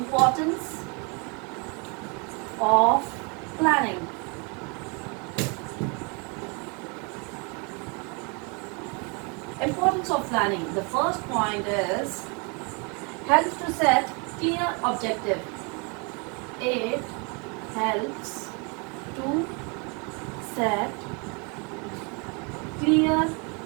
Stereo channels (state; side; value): quieter; left; 32.8 dB